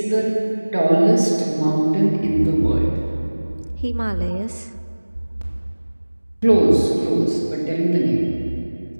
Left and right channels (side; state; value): both; inverted; correlation -1.00